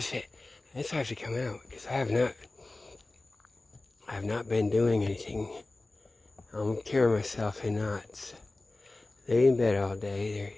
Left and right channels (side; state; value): right; quieter; 3.0 dB